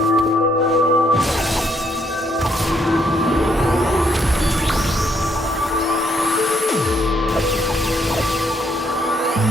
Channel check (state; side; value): normal; both; correlation 0.71